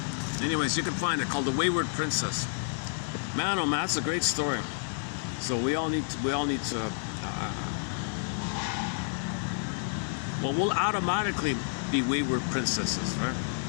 Anyways, you can find it called The Wayward Princess. Man, oh man, that's a great story. So we all need to. Well, we'll automatically be wayward princesses, right?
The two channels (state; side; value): silent; right; digital silence